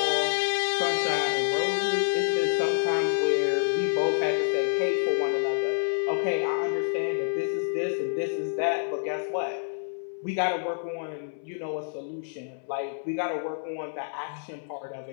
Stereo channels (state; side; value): silent; right; 60 dB below the other